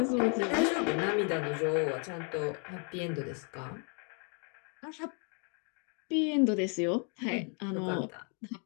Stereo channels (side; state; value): right; quieter; 39.3 dB